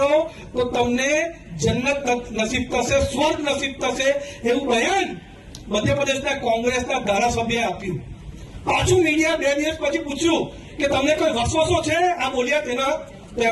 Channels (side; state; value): both; identical; correlation 1.00